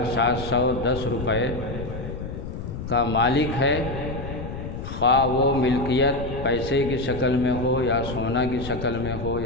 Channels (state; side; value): noise; left; rumble, 7 dB below the sound